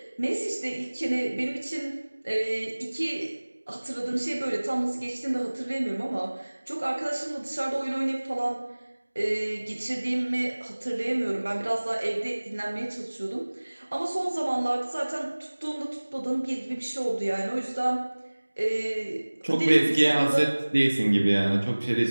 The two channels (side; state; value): both; inverted; correlation -1.00